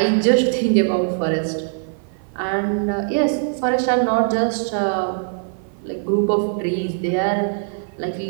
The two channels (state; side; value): silent; left; 55 dB below the other